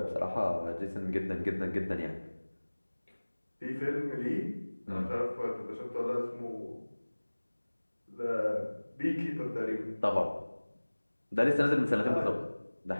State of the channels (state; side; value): inverted; both; correlation -1.00